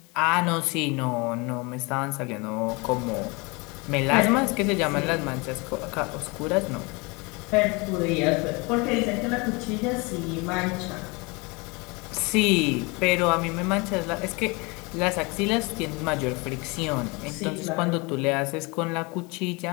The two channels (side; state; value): right; quieter; 27.6 dB